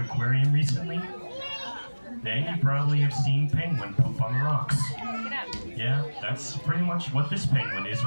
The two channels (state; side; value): inverted; both; correlation -1.00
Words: Aquarium recently? Then you probably have seen penguin poop on the rocks. Yeah, that's pretty much what this penguin is